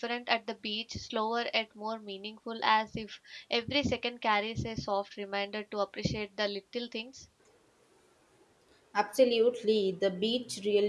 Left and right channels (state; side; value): identical; both; correlation 1.00